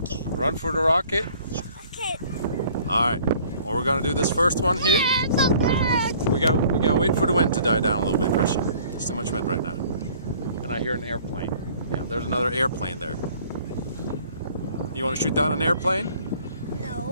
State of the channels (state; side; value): inverted; both; correlation -0.54